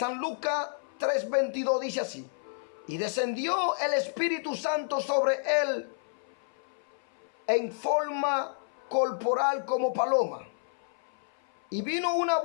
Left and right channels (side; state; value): right; silent; 56 dB below the other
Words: Lucas 3:22 dice así: y descendió el Espíritu Santo sobre él en forma corporal como paloma. Y vino una